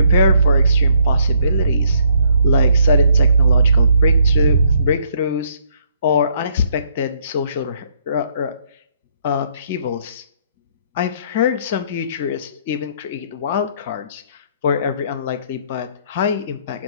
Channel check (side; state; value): both; inverted; correlation -0.68